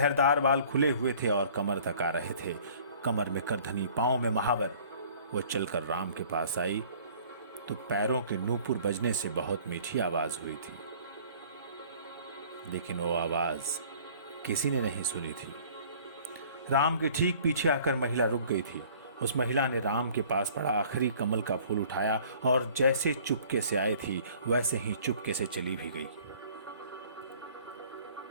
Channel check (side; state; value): both; inverted; correlation -0.52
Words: बाल खुले हुए थे और कमर तक आ रहे थे, कमर में करधनी, पांव में महावर। वो चलकर राम के पास आई तो पैरों के नूपुर बजने से बहुत मीठी आवाज हुई थी, लेकिन वो आवाज किसी ने नहीं सुनी थी। राम के ठीक पीछे आकर महिला रुक गई थी। उस महिला ने राम के पास पड़ा आखिरी कमल का फूल उठाया और जैसे चुपके से आई थी वैसे ही चुपके से चली भी गई।